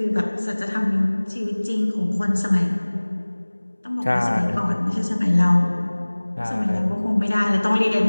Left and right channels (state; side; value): inverted; both; correlation -1.00